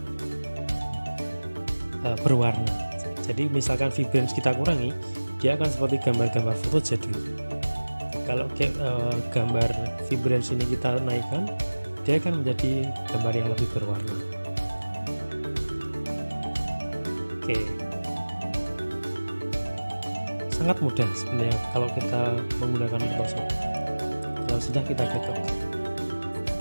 berwarna. Jadi misalkan vibrance kita kurangi, dia akan seperti gambar-gambar foto jadul. Kalau gambar vibrance ini kita naikkan, dia akan menjadi gambar yang lebih berwarna. Oke, sangat mudah sebenarnya kalau kita menggunakan Photoshop. Kalau sudah, kita klik OK.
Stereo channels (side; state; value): both; inverted; correlation -1.00